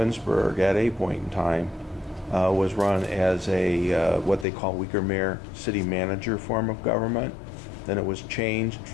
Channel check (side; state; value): right; drops out; at 4.5 s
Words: at a point in time, was run as a what they call weaker mayor city manager form of government. Then it was changed